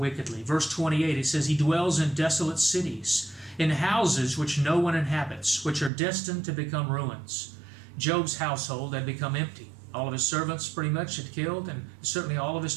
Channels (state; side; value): drops out; left; at 5.9 s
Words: Verse 28, it says, he dwells in desolate cities, in houses which no one inhabits, which are destined to become ruins. Job's household had become empty. All of his servants pretty much had killed, and certainly all of his